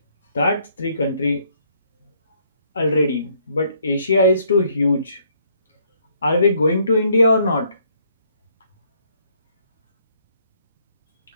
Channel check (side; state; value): both; inverted; correlation -0.67